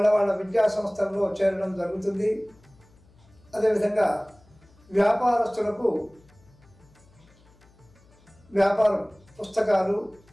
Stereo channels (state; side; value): noise; left; hum, 29 dB below the sound